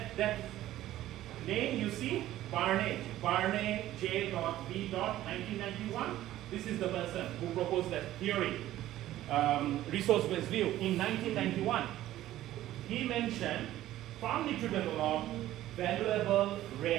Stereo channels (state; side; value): quieter; left; 14.1 dB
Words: name you see, Barney J. B. 1991. This is the person who proposed that theory, resource-based view in 1991. He mentioned firm need to develop valuable,